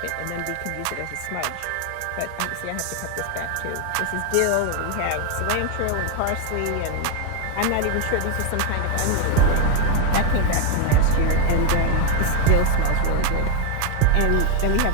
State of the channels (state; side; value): different; both; correlation 0.01